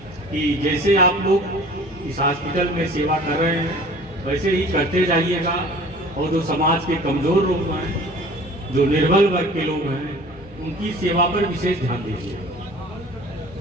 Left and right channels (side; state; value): both; normal; correlation 0.46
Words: कि जैसे आप लोग इस हॉस्पिटल में सेवा कर रहे हैं वैसे ही करते जाइएगा और जो समाज के कमजोर लोग हैं, जो निर्बल वर्ग के लोग हैं, उनकी सेवा पर विशेष ध्यान दीजिए।